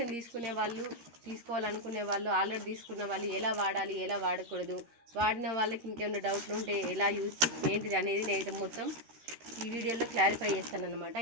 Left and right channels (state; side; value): late; left; 13 ms